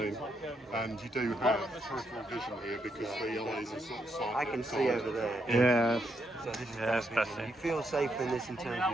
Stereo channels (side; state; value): both; normal; correlation 0.79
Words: And you do have peripheral vision here because the eyes are sort of slightly I can see over there. Yeah. So this is That's better vision. better. You feel safer in this in terms